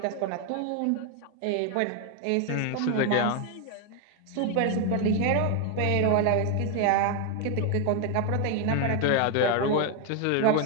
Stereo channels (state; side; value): different; both; correlation 0.01